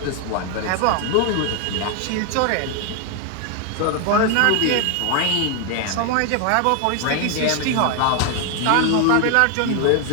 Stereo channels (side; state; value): both; different; correlation 0.01